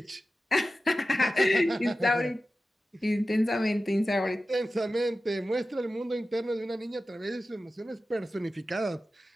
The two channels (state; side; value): normal; both; correlation 0.94